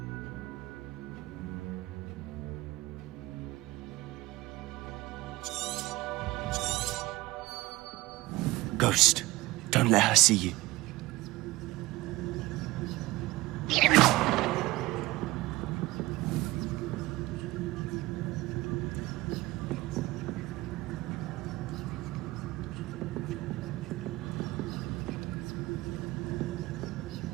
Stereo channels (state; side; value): quieter; left; 19.5 dB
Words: Ghost, don't let her see you.